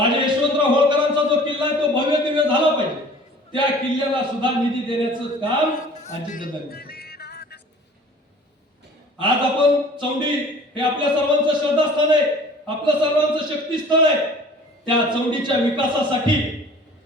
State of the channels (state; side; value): normal; both; correlation 0.48